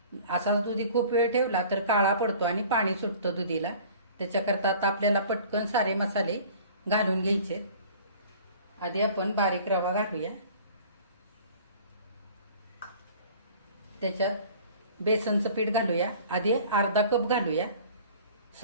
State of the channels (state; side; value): inverted; both; correlation -0.47